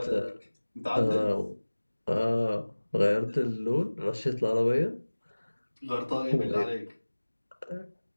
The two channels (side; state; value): both; inverted; correlation -1.00